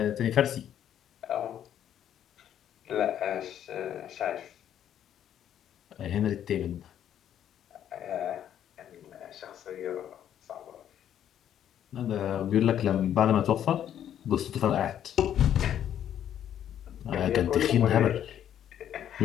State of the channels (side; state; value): right; quieter; 10.3 dB